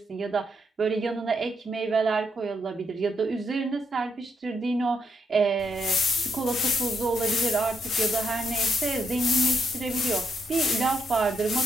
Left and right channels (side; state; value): both; normal; correlation 0.78